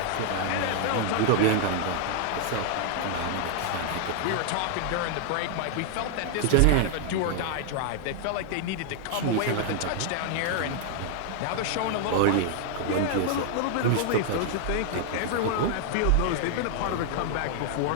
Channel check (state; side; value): different; both; correlation 0.00